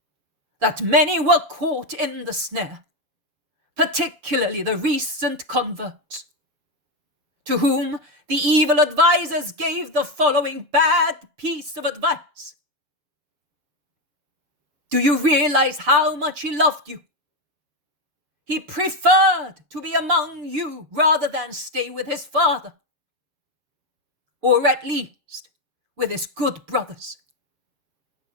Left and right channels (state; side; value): late; left; 6.7 ms